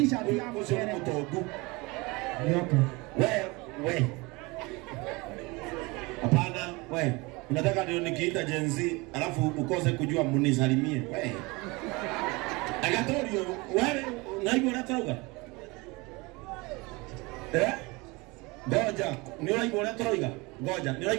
yangu sio mtogu. Nyoka. We. Hapana, we. Unataka ndio nikiita Gen Z alafu ukose kujua munisalimie. We. Agatorio, wewe unaibu unatoroga? Goja, ni unaibu unatoroga? Goja, ni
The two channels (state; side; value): quieter; left; 25.0 dB